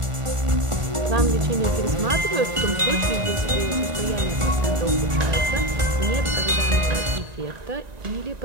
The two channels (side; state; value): left; late; 1.4 ms